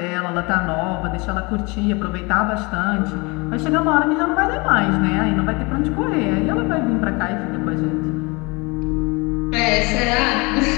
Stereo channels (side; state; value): right; quieter; 27.0 dB